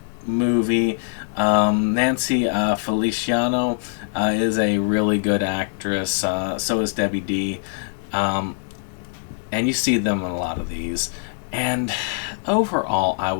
movie. Nancy Feliciano is a really good actress. So is Debbie D. And you see them in a lot of these. And overall, I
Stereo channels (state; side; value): silent; right; 64 dB below the other